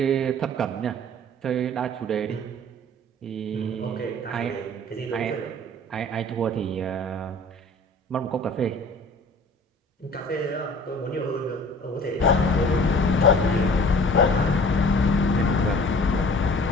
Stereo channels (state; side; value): normal; both; correlation 0.47